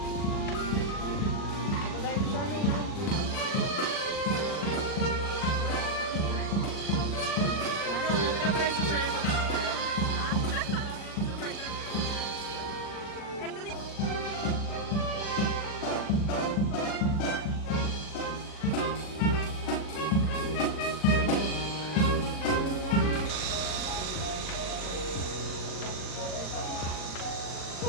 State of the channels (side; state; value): right; late; 40 ms